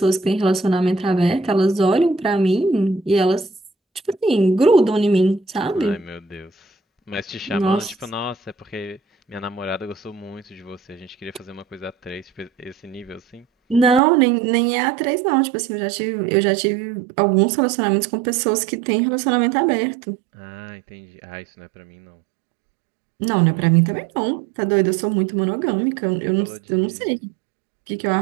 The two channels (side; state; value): left; drops out; at 14.0 s